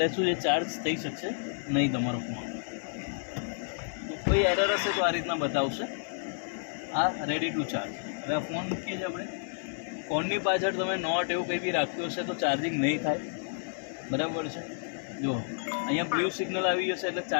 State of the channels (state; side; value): silent; right; digital silence